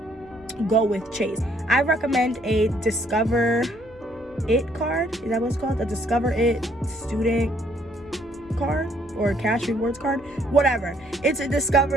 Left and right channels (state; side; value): normal; both; correlation 0.66